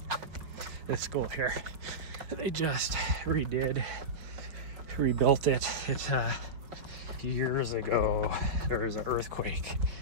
This school here, they just rebuilt it. It years ago there was an earthquake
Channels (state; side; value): late; left; 5.3 ms